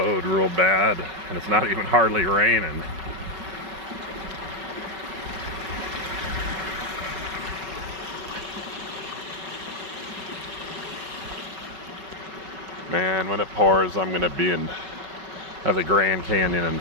real bad, and it's not even hardly raining. Man, when it pours, I'm gonna be at the Grand Canyon in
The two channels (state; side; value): late; left; 5.3 ms